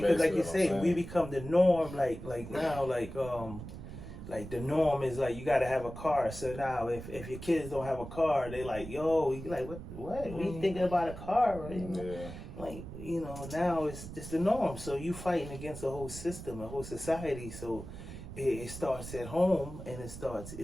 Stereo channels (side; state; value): right; noise; rumble, 11 dB below the sound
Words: like you say, we become the norm. Like now, like the norm is like you gotta have a car. So now if your kids don't have a car, they like, yo, you like what? We thinking about a car, right? Yeah. Like, now it's the norm. So you fighting against the whole system, the whole society. So it starts at home, and